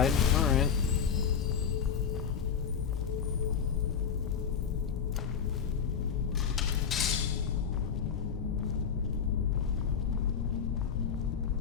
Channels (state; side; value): quieter; right; 7.1 dB